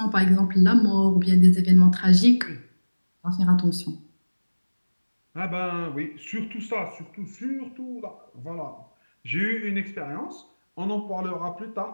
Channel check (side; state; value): both; inverted; correlation -1.00